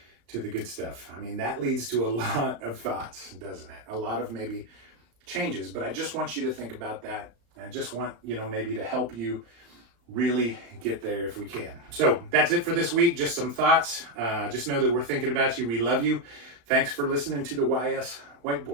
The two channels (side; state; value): left; late; 35 ms